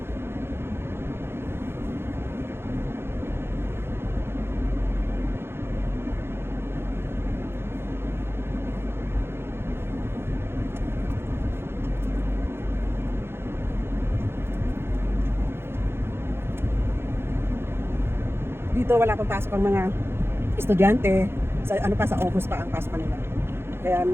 Dito wala pang pasok ang mga estudyante. Sa sa August pa ang pasok nila. Kaya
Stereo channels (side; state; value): left; late; 0.11 ms